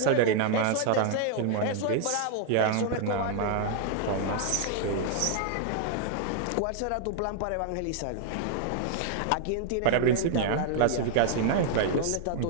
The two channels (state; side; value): different; both; correlation -0.01